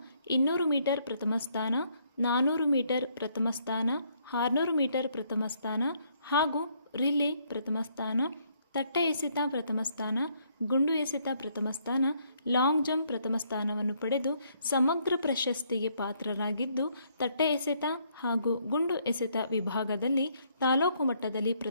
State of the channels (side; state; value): both; inverted; correlation -0.69